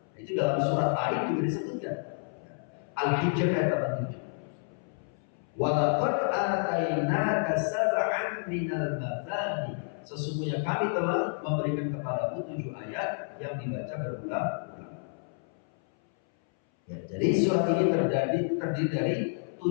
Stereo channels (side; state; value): right; silent; 58 dB below the other